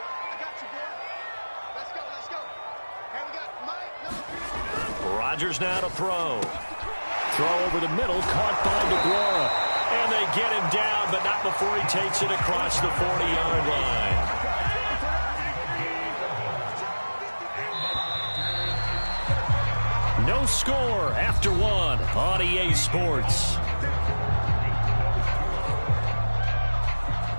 Rodgers now to throw. Throw over the middle, caught by DeGuara. And they get him down, but not before he takes it across the 40-yard line. No score after one on EA Sports.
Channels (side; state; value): both; inverted; correlation -1.00